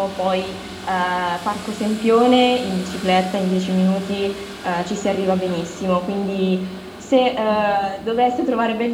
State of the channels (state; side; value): identical; both; correlation 1.00